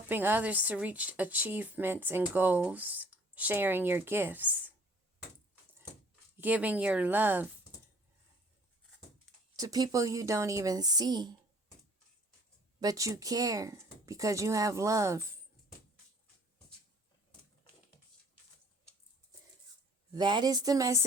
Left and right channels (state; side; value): normal; both; correlation 0.54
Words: others to reach achievements and goals. Sharing your gifts. Giving your love to people you don't even see, but you care because you have love. That is the